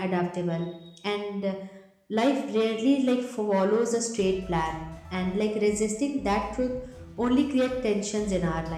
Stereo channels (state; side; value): identical; both; correlation 1.00